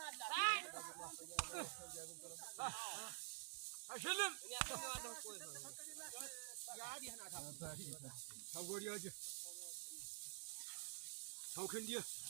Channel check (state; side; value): silent; left; digital silence